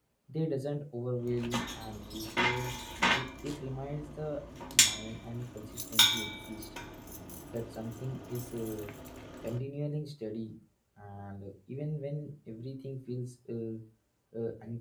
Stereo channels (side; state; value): both; identical; correlation 1.00